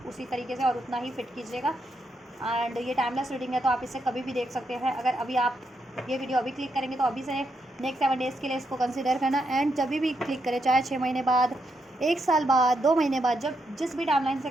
उसी तरीके से और उतना ही फिट कीजिएगा। एंड ये टाइमलेस रीडिंग है, तो आप इसे कभी भी देख सकते हैं। अगर अभी आप ये वीडियो अभी क्लिक करेंगे तो अभी से नेक्स्ट 7 डेज़ के लिए इसको कंसिडर करना। एंड जब भी क्लिक करें, चाहे 6 महीने बाद, 1 साल बाद, 2 महीने बाद, जब जिस भी टाइमलाइन से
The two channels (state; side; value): normal; both; correlation 0.80